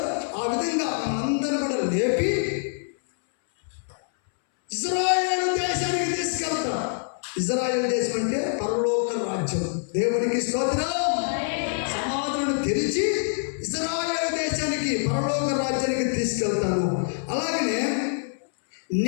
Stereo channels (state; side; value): silent; right; 61 dB below the other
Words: ఆ విధంగా మనందరూ కూడా లేపి ఇశ్రాయేలు దేశానికి తీసుకెళ్తాం. ఇశ్రాయేలు దేశం అంటే పరలోక రాజ్యం. దేవునికి స్తోత్రం. సమాధులను తెరిచి ఇశ్రాయేలు దేశానికి, పరలోక రాజ్యానికి తీసుకెళ్తాను. అలాగనే